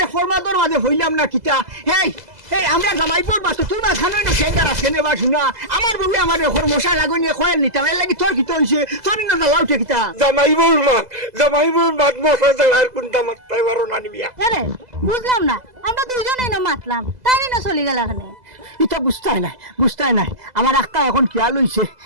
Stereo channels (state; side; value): late; left; 2.0 ms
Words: ফরমাদর মাঝে হইলাম না কিটা হেই এই আমরা জামাইপুর মাছ তোমরা খানোই না সেন্টার আছে নেবা শুনা আমার বউ আমার ঘর মশা লাগুনি খয়েল নিতাম এর লাগি তোর কিতা হইছে তোর না লাউটে কিতা জামাইপুর মাছ মশা জ্বালার কোনটা মাছ তাই বারো না নিবিয়া আরে বুঝলাম না আমরা দুইজনেই না মাতলাম তাই না চলে গেল এখানে এটা বুঝতাই নাই আমার আক্কা এখন খেয়াল হইছে